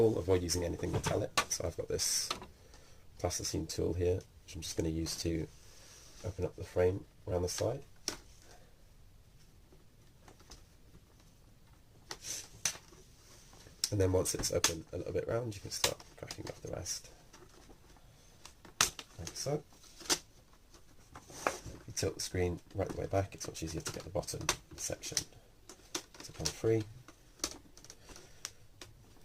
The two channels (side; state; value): both; identical; correlation 1.00